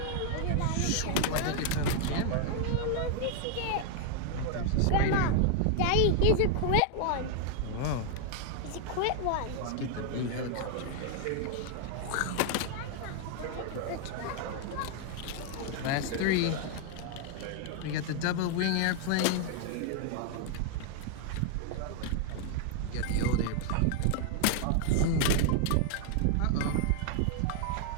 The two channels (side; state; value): both; different; correlation 0.00